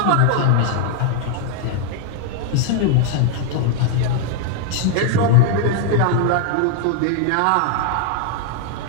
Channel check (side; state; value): both; different; correlation 0.00